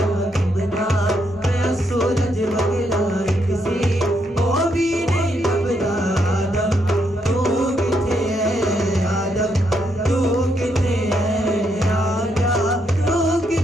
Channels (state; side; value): normal; both; correlation 0.77